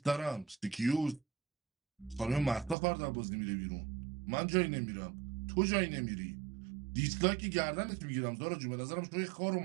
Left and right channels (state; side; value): drops out; left; at 2.8 s